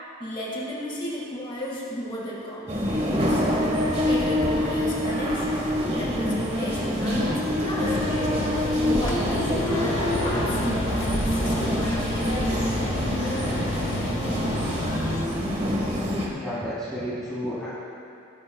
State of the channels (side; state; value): both; normal; correlation 0.63